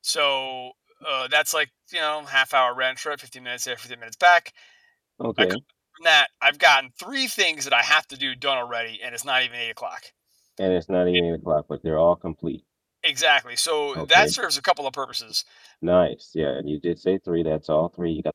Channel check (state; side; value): identical; both; correlation 1.00